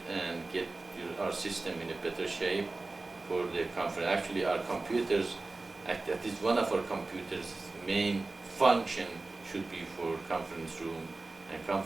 and get our system in a better shape for the conference. Actually, our computers, that is one of our computers' main function should be for conference room and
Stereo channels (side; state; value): left; quieter; 3.4 dB